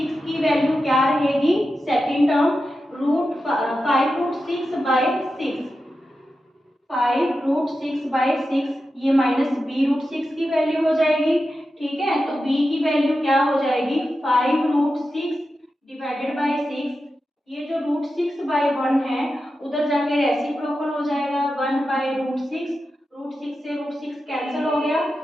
की वैल्यू क्या रहेगी सेकेंड टर्म √5√6/6, 5√6/6, ये माइनस b√6 की वैल्यू हो जाएगी, ठीक है। तो b की वैल्यू क्या हो जाएगी 5√6 डिवाइडेड बाई 6, ये जो √6/1 है उधर जाके रेसिप्रोकल हो जाएगा 1/√6, √6 से √6 कैंसिल हो गया,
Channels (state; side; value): normal; both; correlation 0.91